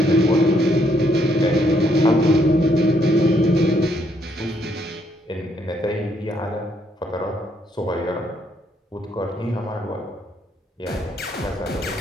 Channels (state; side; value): normal; both; correlation 0.72